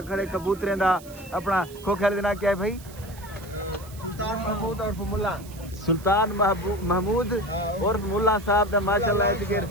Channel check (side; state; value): right; noise; hiss, 20 dB below the sound